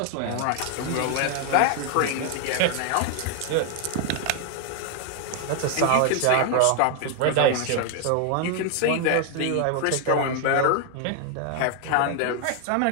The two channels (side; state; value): both; different; correlation 0.00